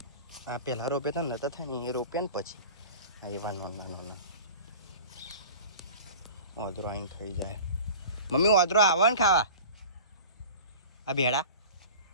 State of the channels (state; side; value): inverted; both; correlation -0.39